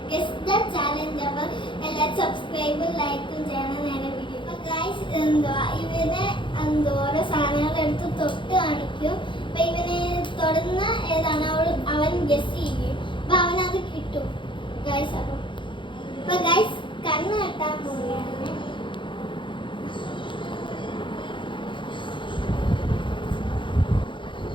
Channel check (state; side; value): late; right; 0.24 ms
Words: Guess the challenge. അപ്പോൾ എല്ലാവരും സബ്സ്ക്രൈബും ലൈക്കും ചെയ്യണം നേരെ വീഡിയോ. അപ്പോൾ ഗൈസ് ഇവനെ ഓരോ സാധനങ്ങൾ എടുത്ത് തൊട്ട് കാണിക്കും. അപ്പോൾ ഇവനെ തൊടുന്ന ഏതാണ് അവൻ ഗെസ് ചെയ്യും. അപ്പോൾ അവനത് കിട്ടും ഗൈസ്. അപ്പോൾ ഗൈസ് കണ്ണ് കെട്ടാൻ പോവുകയാണ്.